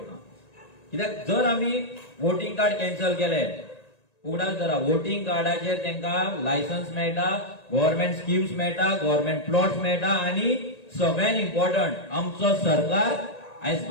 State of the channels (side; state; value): right; late; 1.9 ms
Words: कित्याक जर आमी वोटिंग कार्ड कॅन्सल केले, उगडास धरा, वोटिंग कार्डाचेर तांकां लायसन्स मेळटा, गव्हर्नमेंट स्किम्स मेळटा, गव्हर्नमेंट प्लॉट्स मेळटा, आनी सगळ्यात इम्पॉर्टंट आमचो सरकार आयज